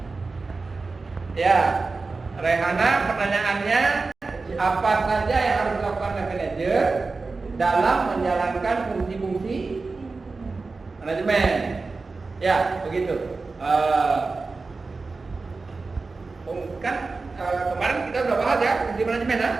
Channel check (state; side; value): quieter; left; 3.9 dB